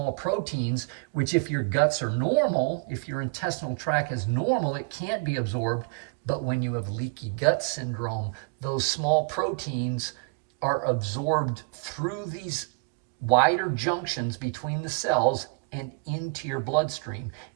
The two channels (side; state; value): left; quieter; 33.5 dB